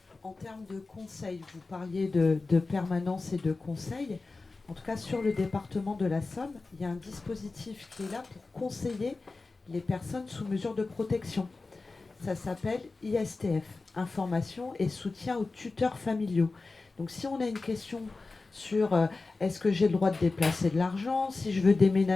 en termes de conseils, vous parliez de permanence et de conseils. En tout cas, sur le département de la Somme, il y a un dispositif qui est là pour conseiller les personnes sous mesure de protection. Ça s'appelle ISTF, Information et soutien aux tuteurs familiaux. Donc si on a une question sur est-ce que j'ai le droit de déplacer de l'argent, si je veux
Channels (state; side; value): quieter; right; 3.7 dB